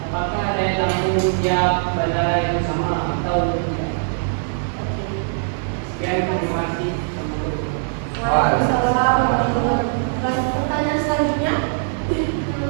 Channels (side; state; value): left; silent; digital silence